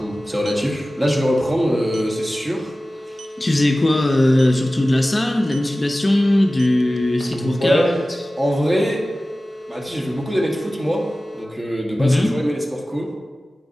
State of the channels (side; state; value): both; normal; correlation 0.96